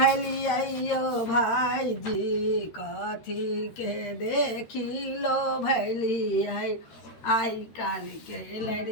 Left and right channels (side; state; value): right; late; 13 ms